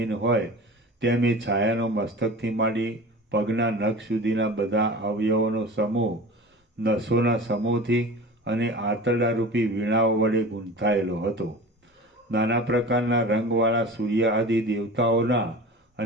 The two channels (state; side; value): normal; both; correlation 0.35